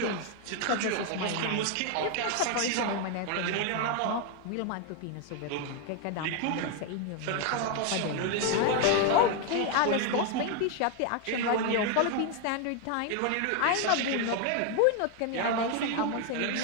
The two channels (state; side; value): different; both; correlation 0.01